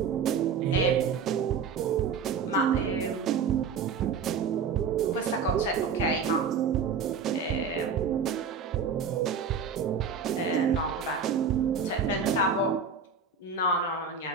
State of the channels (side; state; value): left; quieter; 5.7 dB